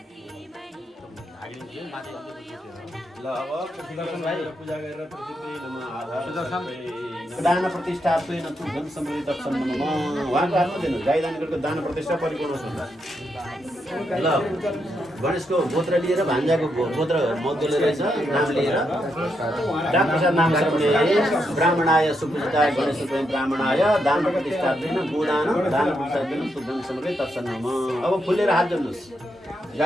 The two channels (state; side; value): normal; both; correlation 0.81